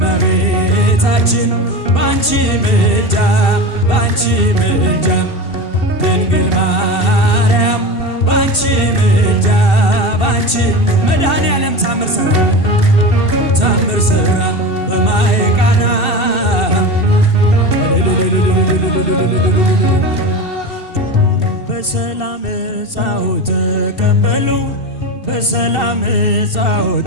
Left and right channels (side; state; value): right; late; 2.7 ms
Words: እመቤታችን ባንቺ ምልጃ ድንግል ማርያም ባንቺ ምልጃ መድኃኔዓለም ታምር ሠራ በማየ ቃና በሰላም ዕፃው ተቀበሉ በሰላም ዕፃው